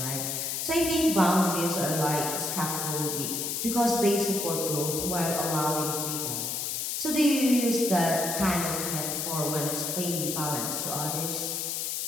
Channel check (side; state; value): left; noise; hiss, 2 dB below the sound